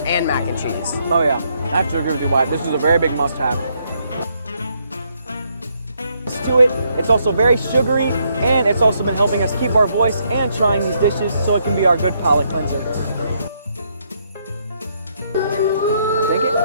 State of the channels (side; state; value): both; inverted; correlation -0.74